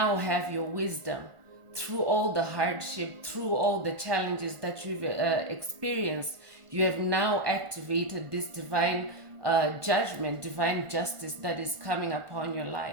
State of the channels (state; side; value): late; left; 1.4 ms